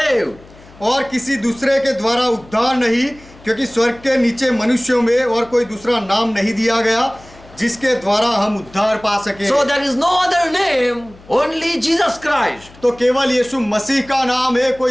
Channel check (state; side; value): noise; left; hum, 23 dB below the sound